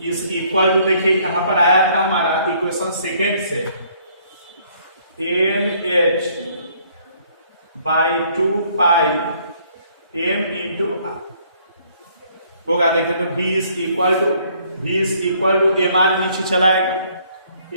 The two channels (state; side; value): inverted; both; correlation -0.63